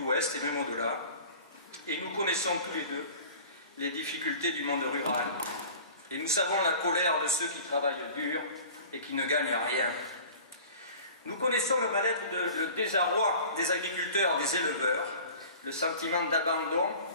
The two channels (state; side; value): inverted; both; correlation -0.42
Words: et même au-delà. Et nous connaissons tous les deux les difficultés du monde rural. Et nous savons la colère de ceux qui travaillent dur et qui ne gagnent rien. Nous connaissons le mal-être, le désarroi des agriculteurs, des éleveurs, le sentiment d'abandon